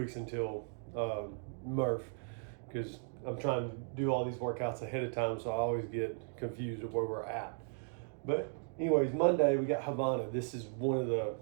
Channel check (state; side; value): silent; left; 53 dB below the other